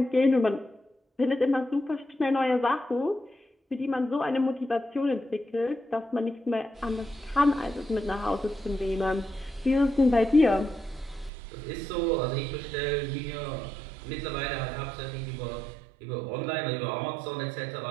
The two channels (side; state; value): left; drops out; at 11.3 s